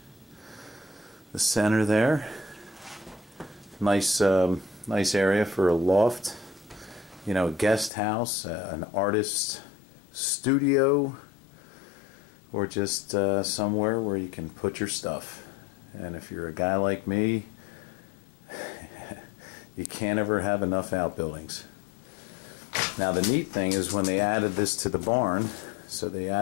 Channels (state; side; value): drops out; right; at 7.9 s